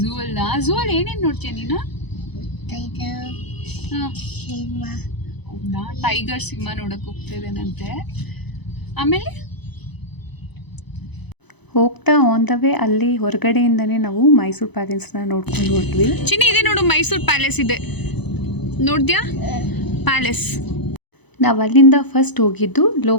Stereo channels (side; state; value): right; late; 0.99 ms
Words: ಝೂ ಅಲ್ಲ? ಝೂ ಅಲ್ಲಿ ಏನೇನು ನೋಡ್ತೀಯ ನೀನು? ಹೌದಾ, ಟೈಗರ್ ಸಿಂಹ ನೋಡಕ್ ಹೋಗ್ತಾ ಇದ್ದೇನಂತೆ. ಆಮೇಲೆ ಹೋಗ್ತಾ ಆನ್ ದ ವೇ ಅಲ್ಲಿ ಹೊರಗಡೆಯಿಂದನೇ ನಾವು ಮೈಸೂರು ಪ್ಯಾಲೇಸ್ನ ನೋಡ್ಕೊಂಡು ಹೋದ್ವಿ. ಚಿನ್ನಿ, ಇದೆ ನೋಡು, ಮೈಸೂರು ಪ್ಯಾಲೇಸ್ ಇದೆ. ನೋಡ್ದ್ಯಾ ಪ್ಯಾಲೇಸ್? ನಾವು ಅಲ್ಲಿಂದ ಫಸ್ಟ್ ಹೋಗಿದ್ದು